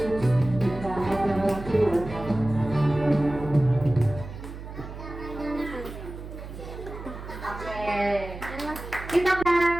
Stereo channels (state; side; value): noise; right; hum, 11 dB below the sound